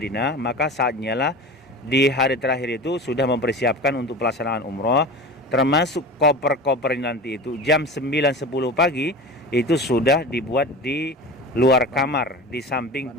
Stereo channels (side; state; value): both; normal; correlation 0.33